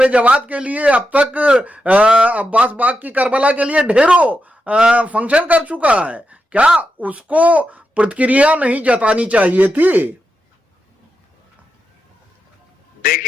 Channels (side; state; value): both; normal; correlation 0.87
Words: जवाद के लिए अब तक अब्बास बाग की करबला के लिए ढेरों फंक्शन कर चुका है। क्या उसको प्रतिक्रिया नहीं जतानी चाहिए थी?